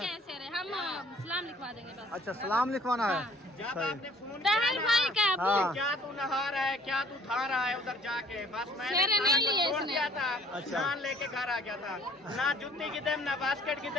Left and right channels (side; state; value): both; normal; correlation 0.56